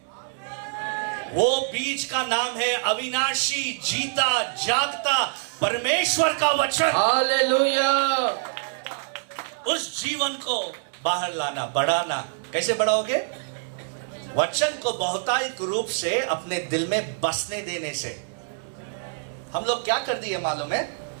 वो बीज का नाम है अविनाशी, जीता जागता परमेश्वर का वचन। हालेलुया। उस जीवन को बाहर लाना, बढ़ाना। कैसे बढ़ाओगे? वचन को बहुतायत रूप से अपने दिल में बसने देने से। हम लोग क्या कर दिए मालूम है?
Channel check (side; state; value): left; silent; digital silence